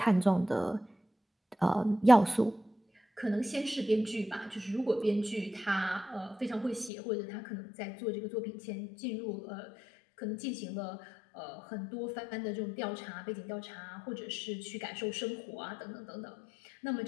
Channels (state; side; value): drops out; right; at 6.9 s